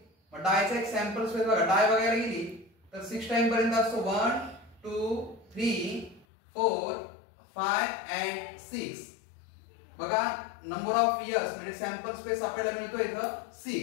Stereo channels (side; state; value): right; drops out; at 6.2 s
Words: मग डायचा एक सॅम्पल स्पेस बघा, डाय बघायला गेली तर 6 टाइम पर्यंत असतो, 1 2 3 4 5 and 6। बघा नंबर ऑफ इयर्स म्हणजे सॅम्पल स्पेस आपल्याला मिळतो इथं